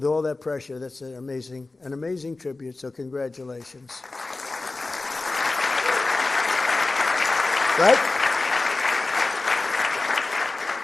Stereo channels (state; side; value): quieter; right; 3.4 dB